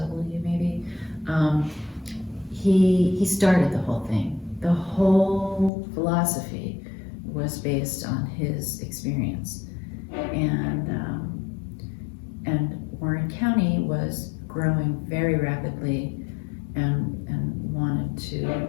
maybe, he started the whole thing. The whole philosophy was based on his experience. And Warren County was growing very rapidly and wanted to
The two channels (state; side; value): drops out; right; at 5.7 s